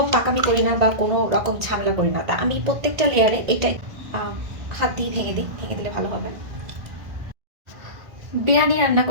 পাকামি করি না বা কোনো রকম ঝামেলা করি না, তা আমি প্রত্যেকটা লেয়ারে এটাই হাত দিয়ে ভেঙে দিই, ভেঙে দিলে ভালো হবে। বিরিয়ানি রান্না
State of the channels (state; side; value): late; left; 1.9 ms